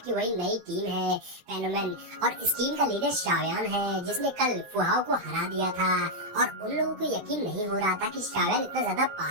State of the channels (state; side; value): late; left; 15 ms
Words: की वही नई टीम है फेनोमेन, और इस टीम का लीडर श्यावन है जिसने कल फुआओ को हरा दिया था। और उन लोगों को यकीन नहीं हो रहा था कि श्यावन इतना ज्यादा